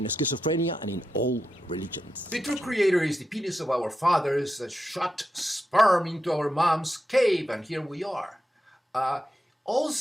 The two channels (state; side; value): normal; both; correlation 0.88